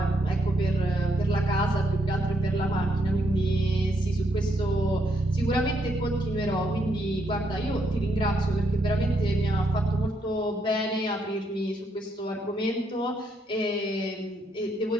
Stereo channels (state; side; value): normal; both; correlation 0.75